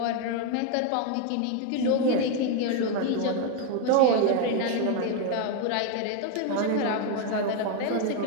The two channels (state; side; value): different; both; correlation 0.01